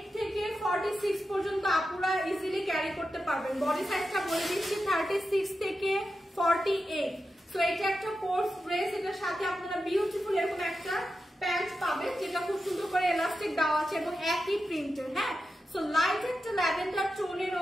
থেকে 46 পর্যন্ত আপুরা ইজিলি ক্যারি করতে পারবেন। বডি সাইজটা বলে দিচ্ছি 36 থেকে 48। সো এটা একটা কোর্স ড্রেস, এটার সাথে আপনারা বিউটিফুল এরকম একটা প্যান্ট পাবেন, যেটা খুব সুন্দর করে এলাস্টিক দেওয়া আছে এবং একই প্রিন্টের। হ্যাঁ, সো লাইট একটা ল্যাভেন্ডার টোনের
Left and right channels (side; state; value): both; normal; correlation 0.90